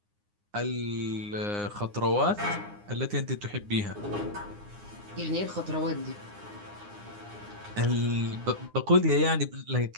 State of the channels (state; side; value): late; left; 9.7 ms